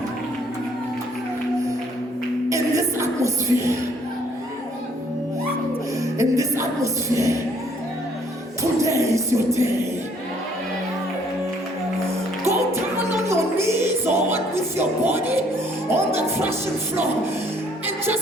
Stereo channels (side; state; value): both; normal; correlation 0.63